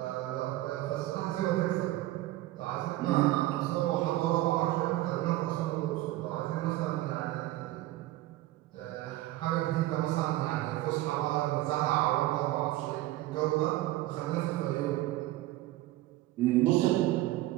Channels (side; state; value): left; quieter; 16.5 dB